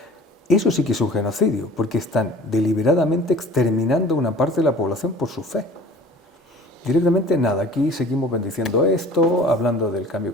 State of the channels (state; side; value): normal; both; correlation 0.46